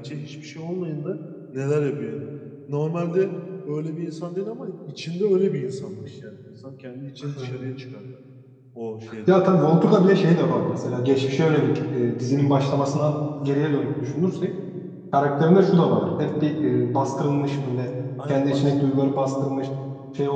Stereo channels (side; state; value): both; identical; correlation 1.00